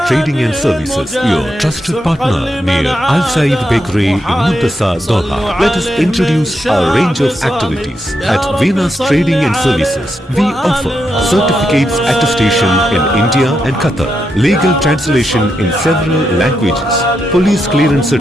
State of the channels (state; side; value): normal; both; correlation 0.83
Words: Trading and Services, your trusted partner near Al Said Bakery in Muntasa, Doha. Let us introduce our range of activities. At Venus Trading and Services, we offer certificates attestation in India and Qatar, legal translation in several languages, police clearance